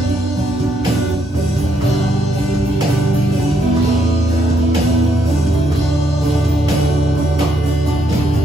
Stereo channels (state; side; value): normal; both; correlation 0.74